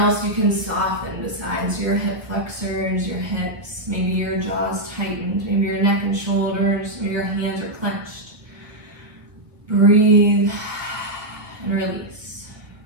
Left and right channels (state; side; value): late; left; 1.5 ms